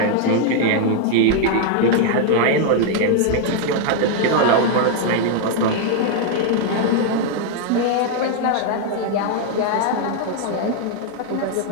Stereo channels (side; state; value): both; different; correlation 0.00